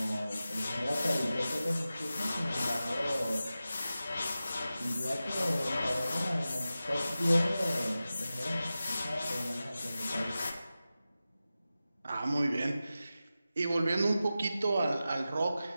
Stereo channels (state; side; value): inverted; both; correlation -0.94